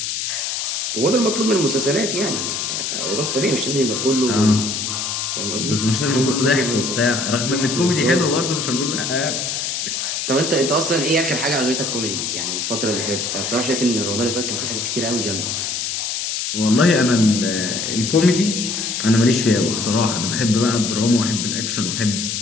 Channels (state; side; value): noise; left; hiss, 2 dB below the sound